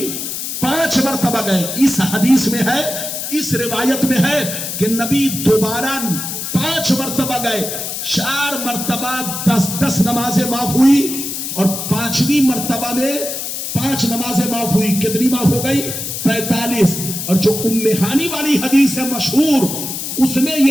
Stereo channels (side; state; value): left; noise; hiss, 5 dB below the sound